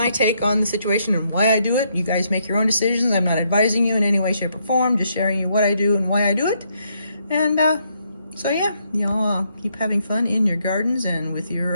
take on the situation and why I do it. You guys make your own decisions. I'm not advising you in any way, shape, or form, just sharing you what I do and why I do it. And so yeah, you know, keep having fun in your gardens and with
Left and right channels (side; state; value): both; inverted; correlation -0.75